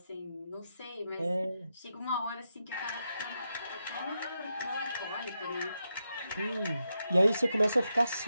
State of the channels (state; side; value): inverted; both; correlation -0.85